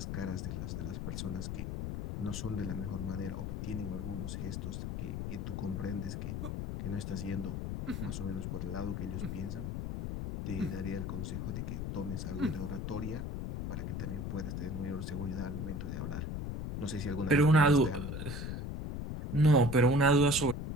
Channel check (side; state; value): left; noise; rumble, 4 dB below the sound